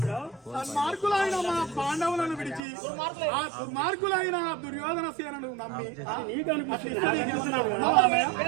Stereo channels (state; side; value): drops out; left; at 2.6 s